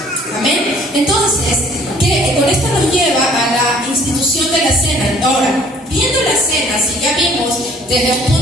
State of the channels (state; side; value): normal; both; correlation 0.56